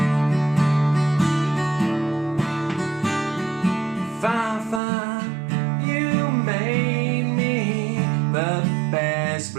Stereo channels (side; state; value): left; drops out; at 4.8 s